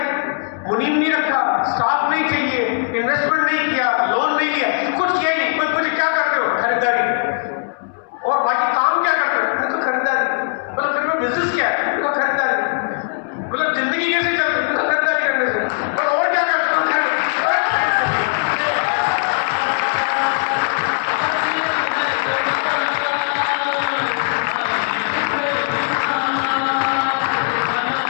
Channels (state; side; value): silent; right; 66 dB below the other